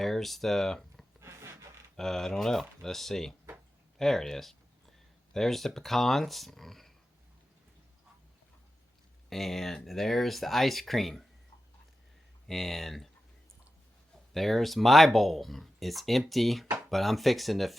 There's the, I don't know. Let's see. There it is. There's the pecans. And there's the ice cream. And there's my bowl. It's empty, but I'm fixing to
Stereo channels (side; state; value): both; normal; correlation 0.92